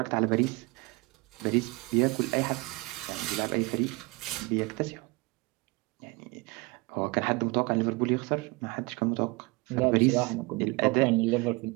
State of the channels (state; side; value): quieter; left; 25.4 dB